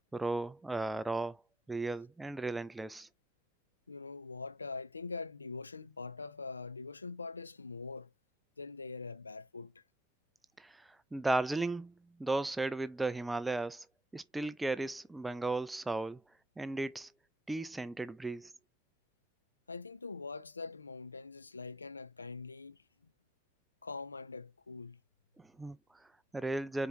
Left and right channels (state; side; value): normal; both; correlation 0.70